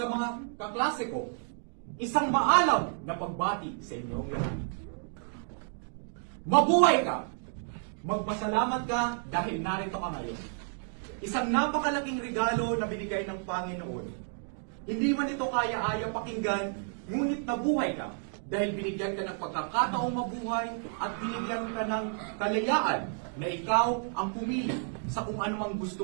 mga kaklase ko, isang maalam na pagbati sa inyong lahat. Mabuhay ka! Magpasalamat ka dahil narito ka ngayon. Isang napakalaking regalo na binigay ng Panginoon. Hindi man ito kaya-aya pakinggan, ngunit nabuhay ka dahil binigyan ka ng pagkakataong mabuhay at binigyan ka ng kalayaan na ikaw ang pumili sa kung anumang gusto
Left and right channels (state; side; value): silent; left; 56 dB below the other